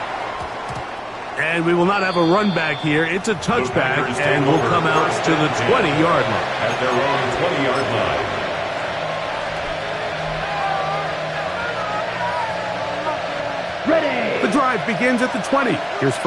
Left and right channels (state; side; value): identical; both; correlation 1.00